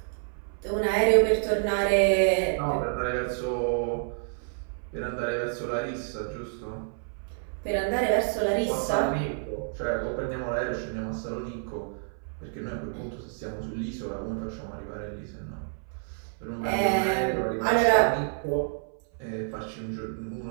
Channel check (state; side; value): silent; left; 59 dB below the other